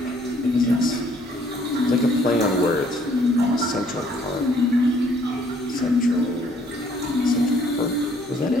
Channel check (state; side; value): normal; both; correlation 0.63